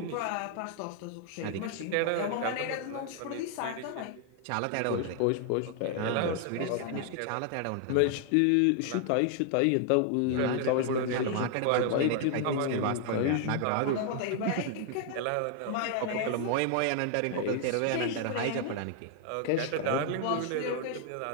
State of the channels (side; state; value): both; different; correlation 0.00